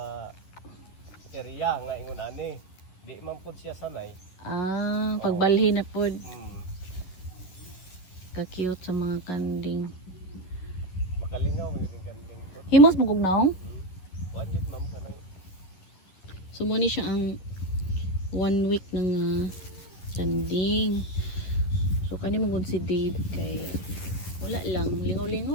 area nga ingon ani, di man pud siya sanay. Pagbalhin na pud. Ka-cute sa mga kanding. Makalingaw yun yung kanding pud. Himos magugnaong? Wanjit ma'am kanang. So mo ni siya ang 1 week ng kanding. So kani mong si Dave kay wala lang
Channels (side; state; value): right; late; 11 ms